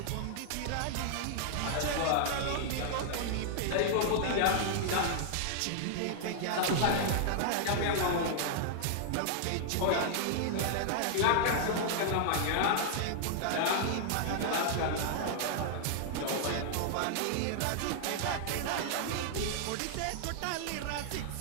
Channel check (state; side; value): different; both; correlation -0.01